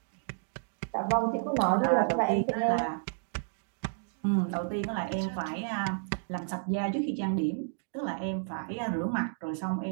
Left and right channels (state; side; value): silent; left; digital silence